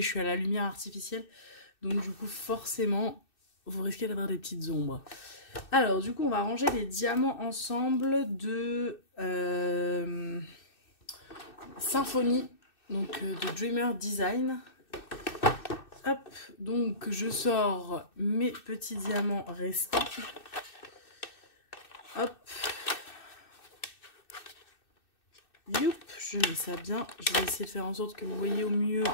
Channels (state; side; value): late; right; 2.6 ms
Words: je suis à la lumière artificielle. Donc du coup forcément vous risquez d'avoir des petites ombres. Alors du coup on va ranger les diamants ensemble de Symphonie, donc de Dreamer Design. Hop, donc je sors mes petits diamants restants. Hop. Youp, je mets ça bien. Je vais essayer de faire en sorte que vous voyez au mieux.